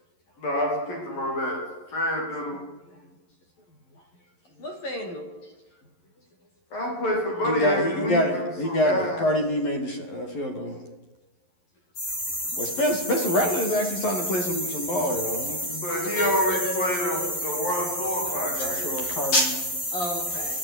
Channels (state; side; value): late; right; 11 ms